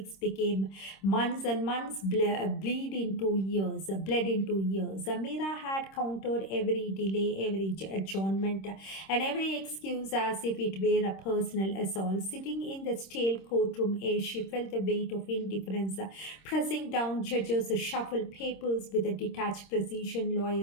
became months, and months bled into years. Amira had countered every delay, every adjournment, and every excuse as if it were a personal assault. Sitting in the stale courtroom air, she felt the weight of indifference pressing down. Judges shuffled papers with a detached precision.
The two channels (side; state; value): right; late; 26 ms